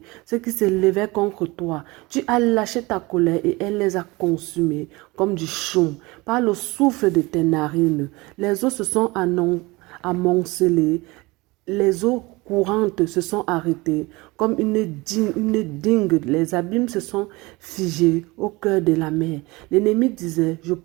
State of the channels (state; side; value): quieter; left; 23.1 dB